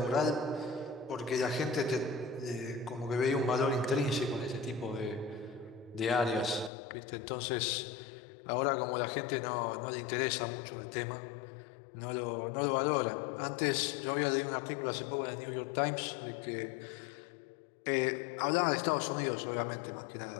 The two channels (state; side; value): drops out; right; at 6.7 s